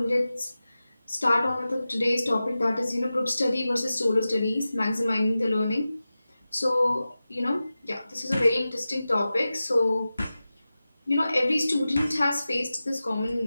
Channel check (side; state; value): both; inverted; correlation -0.95